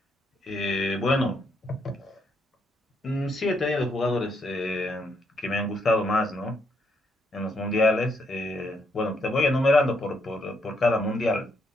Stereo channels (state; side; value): normal; both; correlation 0.75